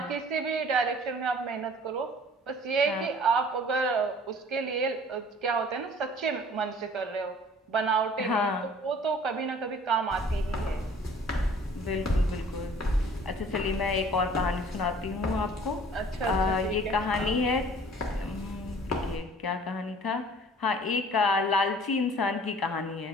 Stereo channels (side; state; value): both; normal; correlation 0.51